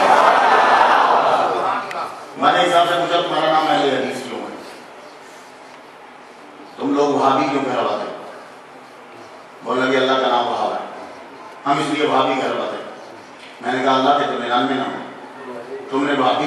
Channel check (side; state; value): both; identical; correlation 1.00